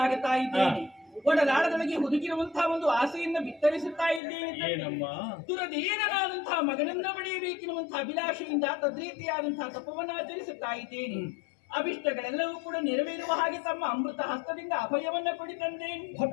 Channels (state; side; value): drops out; right; at 4.2 s